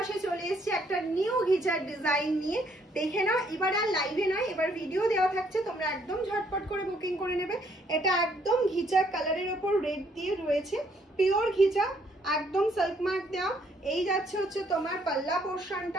চলে এসেছে একটা নিউ ঘিচার ডিজাইন নিয়ে, দেখে নাও। এবার আর লাইভে নয়, এবার ভিডিও দেওয়া থাকছে, তোমরা একদম ঝটপট করে বুকিং করে নেবে। এটা একদম ঘিচা কালারের ওপর রেড দিয়ে রয়েছে, পিওর ঘিচা, একদম সিল্ক মার্ক দেওয়া। এই যাচ্ছে হচ্ছে তোমার পাল্লা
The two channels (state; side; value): normal; both; correlation 0.68